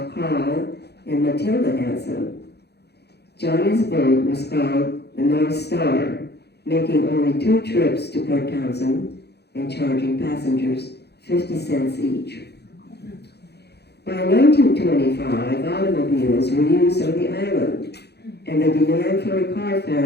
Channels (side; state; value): right; late; 0.48 ms